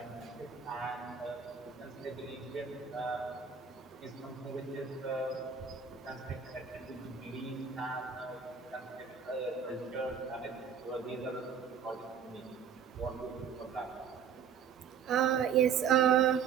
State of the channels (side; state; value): left; quieter; 7.1 dB